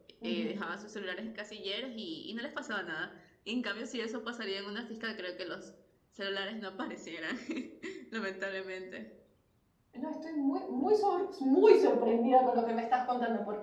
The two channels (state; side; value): identical; both; correlation 1.00